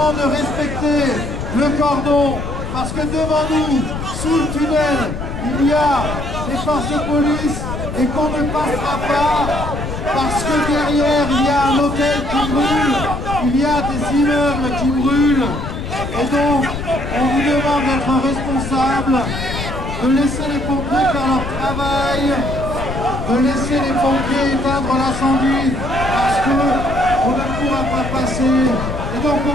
de respecter le cordon parce que devant nous, sous le tunnel, il y a les forces de police et qu'on ne passera pas parce que derrière, il y a un hôtel qui brûle, il y a des immeubles qui brûlent. Et donc, on vous demande d'être responsable, de laisser les pompiers faire leur travail, de laisser les pompiers éteindre l'incendie parce qu'on ne pourra pas passer. Et donc on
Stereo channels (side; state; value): left; noise; rumble, 6 dB below the sound